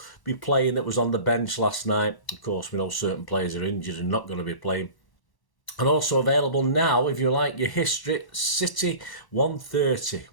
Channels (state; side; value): late; right; 1.0 ms